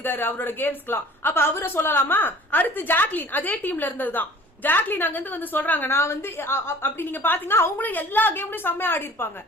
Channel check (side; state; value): both; normal; correlation 0.48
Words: அவரோட கேம்ஸ்க்குலாம். அப்ப அவரை சொல்லலாமா? அடுத்து ஜாக்லின் அதே டீம்ல இருந்ததுதான். ஜாக்லின் அங்க இருந்து வந்து சொல்றாங்க, நான் வந்து அப்படி நீங்க பாத்தீங்கன்னா அவங்களும் எல்லா கேம்லயும் செம்மையா ஆடி இருப்பாங்க.